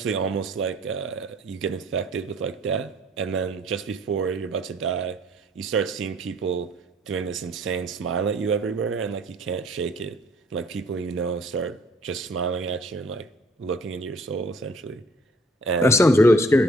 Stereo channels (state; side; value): normal; both; correlation 0.56